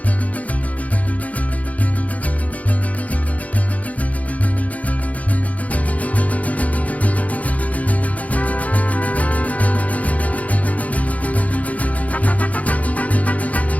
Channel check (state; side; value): late; right; 0.070 ms